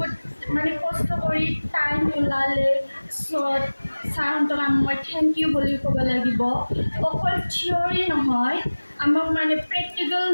মানে কষ্ট কৰি টাইম ওলালে চ' ছাৰহঁতক মই থেংক ইউ বুলি ক'ব লাগিব অকল থিয়ৰী নহয় আমাক মানে প্ৰেক্টিকেল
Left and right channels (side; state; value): both; inverted; correlation -1.00